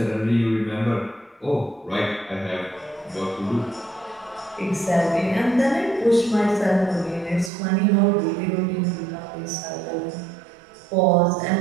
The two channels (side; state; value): left; drops out; at 7.5 s